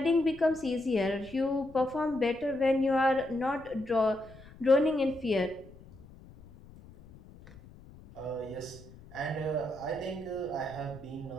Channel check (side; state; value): left; noise; rumble, 20 dB below the sound